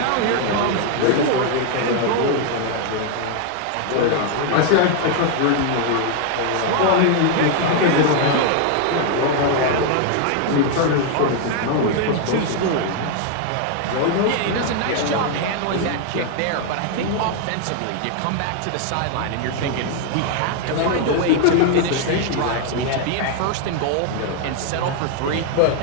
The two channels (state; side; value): different; both; correlation 0.00